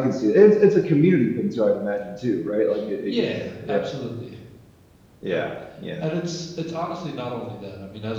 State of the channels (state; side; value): identical; both; correlation 1.00